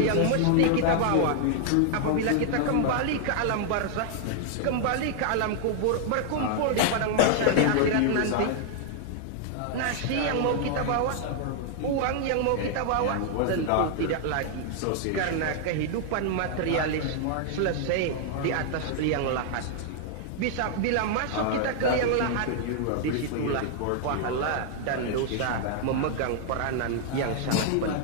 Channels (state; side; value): different; both; correlation 0.00